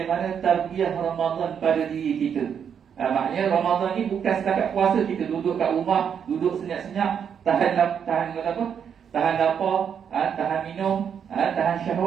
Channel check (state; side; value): quieter; left; 7.7 dB